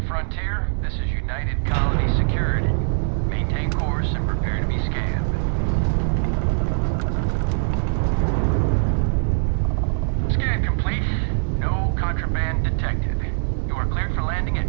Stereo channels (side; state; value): left; silent; digital silence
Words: frontier, this is United Colony Security. Maintain course and prepare to be scanned. Scan complete. No contraband detected. You are cleared for landing at